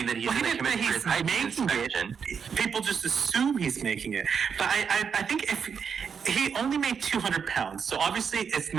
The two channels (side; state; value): left; quieter; 6.6 dB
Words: that he's going to come in for his hygiene inspection. People just assume he's making it. But I think if he only made 200 pounds, so obviously it's